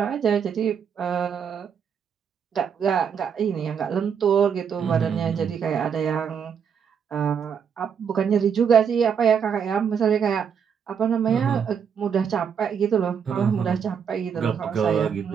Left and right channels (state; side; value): quieter; left; 7.2 dB